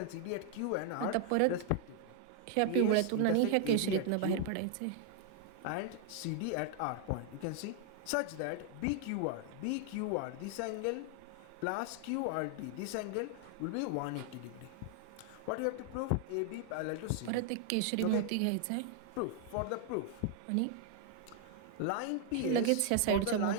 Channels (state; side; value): different; both; correlation 0.00